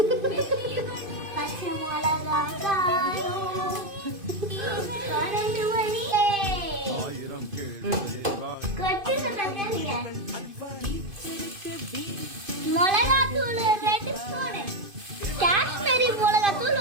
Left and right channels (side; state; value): left; late; 2.5 ms